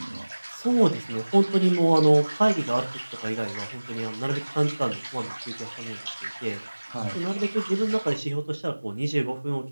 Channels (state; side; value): inverted; both; correlation -1.00